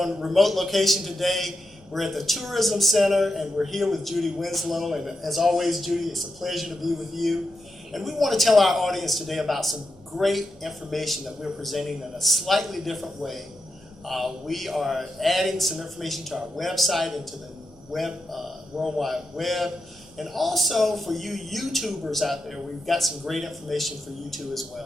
remote location today. We're at the Tourism Center, and we're here with Judy Winslow. And as always, Judy, it's a pleasure to be with you. And we want to tell our audience today about some great information that we're presenting in a slightly different way. We are adding some information to our website and to the World Wide Web. And also for you YouTubers out there, we've got some great information for you too as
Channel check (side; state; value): right; noise; hum, 27 dB below the sound